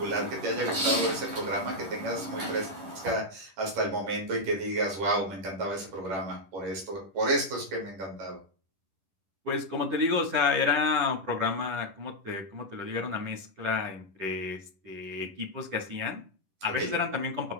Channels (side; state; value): left; late; 10 ms